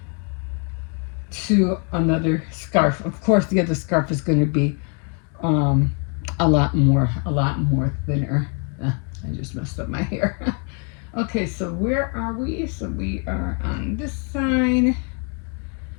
to another scarf. Of course, the other scarf is going to be a lot more thinner. I just messed up my hair. Okay, so where are we? So we are on this side.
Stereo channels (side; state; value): right; quieter; 39.1 dB